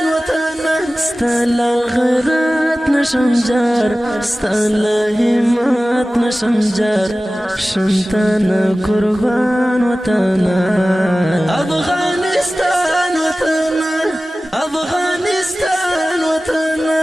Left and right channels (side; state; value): both; normal; correlation 0.96